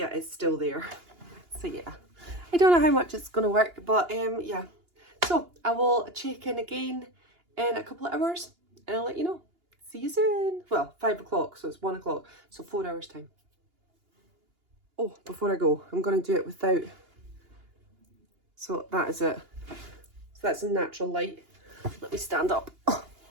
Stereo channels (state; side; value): late; left; 2.9 ms